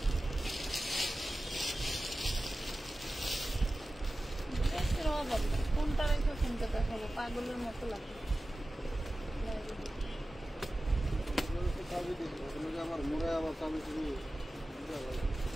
কোনটা রেখে কোনটা দেখাবো, পাগলের মতো লাগে।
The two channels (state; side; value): normal; both; correlation 0.95